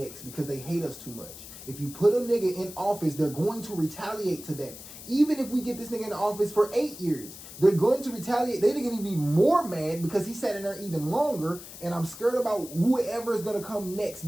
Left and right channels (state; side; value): noise; left; hiss, 14 dB below the sound